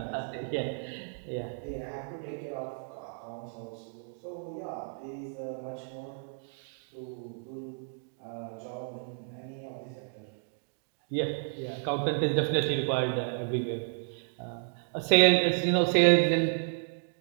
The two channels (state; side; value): silent; left; digital silence